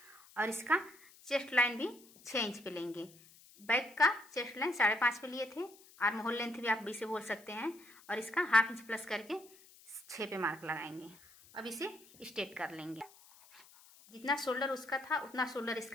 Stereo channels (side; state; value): left; noise; hiss, 24 dB below the sound